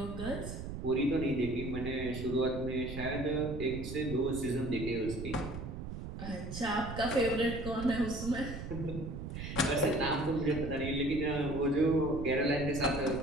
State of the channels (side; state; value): right; noise; rumble, 7 dB below the sound